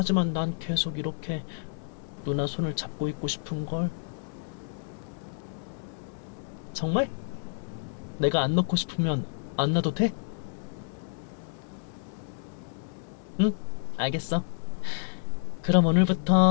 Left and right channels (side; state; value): right; silent; 58 dB below the other